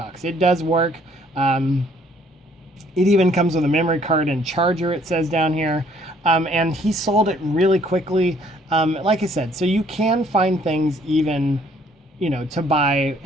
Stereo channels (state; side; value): normal; both; correlation 0.62